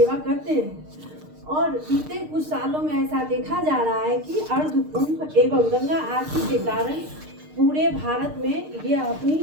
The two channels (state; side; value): late; left; 6.6 ms